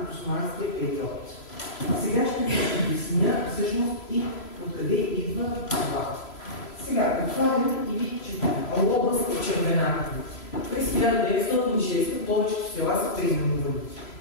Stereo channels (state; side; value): late; right; 3.0 ms